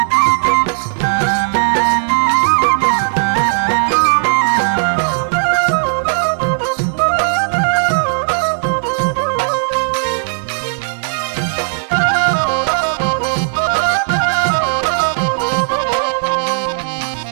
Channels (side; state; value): left; silent; digital silence